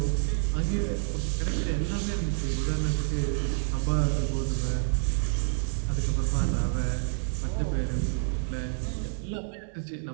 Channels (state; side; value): silent; left; digital silence